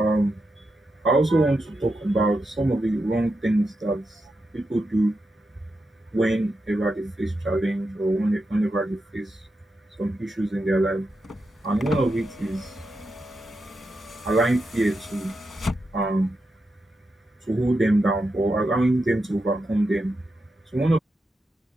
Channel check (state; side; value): normal; both; correlation 0.87